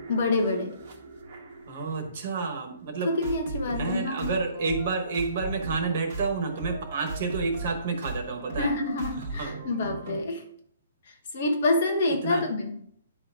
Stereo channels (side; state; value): both; inverted; correlation -0.60